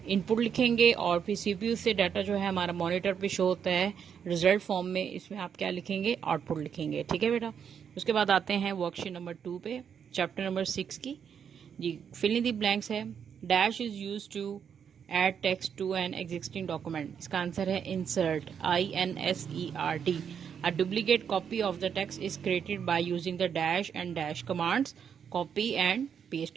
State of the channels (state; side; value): quieter; left; 7.6 dB